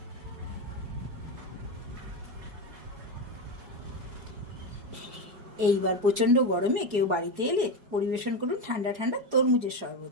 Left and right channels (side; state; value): left; late; 4.8 ms